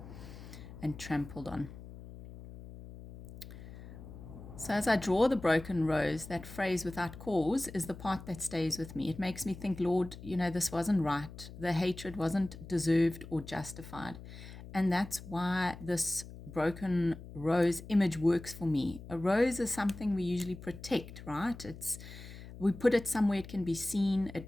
and trampled on. So as I draw the broken rose, that phrase "without cause" is the part that stays with me. It makes me think, Lord, this wasn't right. The hatred wasn't deserved or justified. And that's why this broken rose image works for me. A rose is something we usually protect, right? We put it somewhere it can be seen.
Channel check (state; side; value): noise; left; hum, 14 dB below the sound